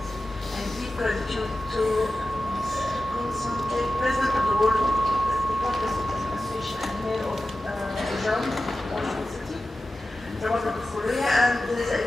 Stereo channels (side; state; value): both; normal; correlation 0.94